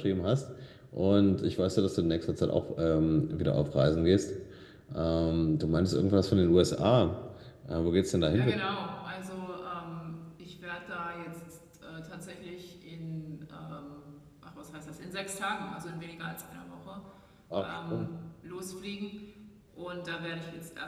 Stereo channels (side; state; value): both; identical; correlation 1.00